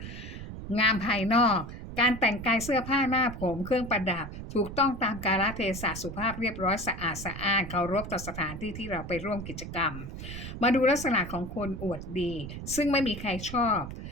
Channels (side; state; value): right; noise; rumble, 9 dB below the sound